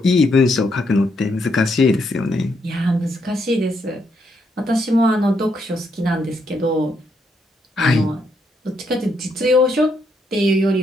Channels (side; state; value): both; normal; correlation 0.77